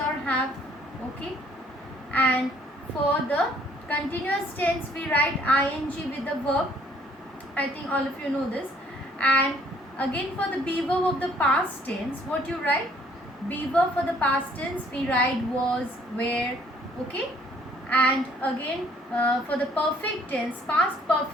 have. Okay, and for the continuous tense we write ing with the verb. I think all of you know this. And again for the be verb of the past tense, what you write? Be verb for the past tense we write was, were. Okay, and again for the perfect tense, past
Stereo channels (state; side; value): normal; both; correlation 0.61